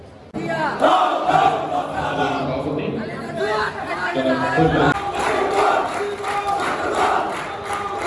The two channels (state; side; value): identical; both; correlation 1.00